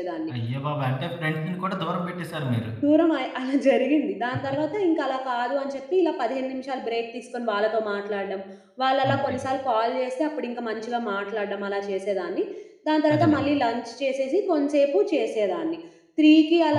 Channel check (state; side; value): identical; both; correlation 1.00